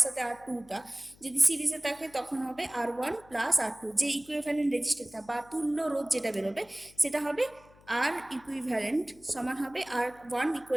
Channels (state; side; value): noise; left; hum, 26 dB below the sound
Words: সাথে আর টুটা যদি সিরিজে থাকে, তখন হবে R one plus R two, যে ইকুইভ্যালেন্ট রেজিস্টারটা বা তুল্য রোধ যেটা বেরোবে, সেটা হবে আর ইকুইভ্যালেন্ট সমান হবে R one